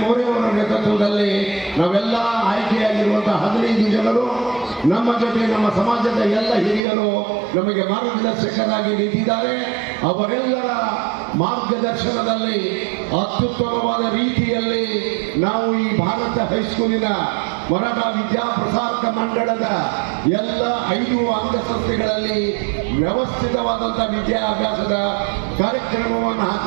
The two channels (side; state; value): left; drops out; at 6.8 s